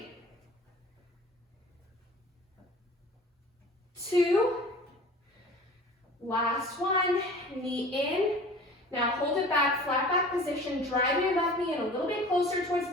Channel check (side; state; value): both; normal; correlation 0.43